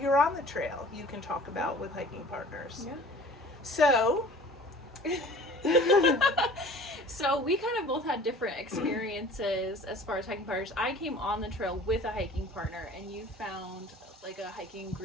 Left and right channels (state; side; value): normal; both; correlation 0.46